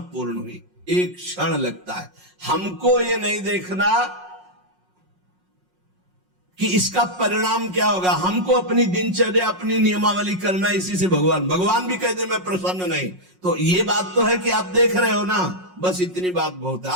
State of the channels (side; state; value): left; late; 5.5 ms